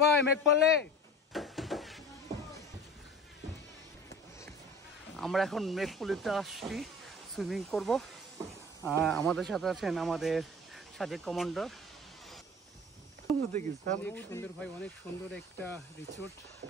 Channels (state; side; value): normal; both; correlation 0.40